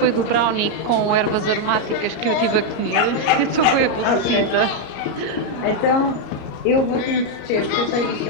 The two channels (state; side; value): late; right; 34 ms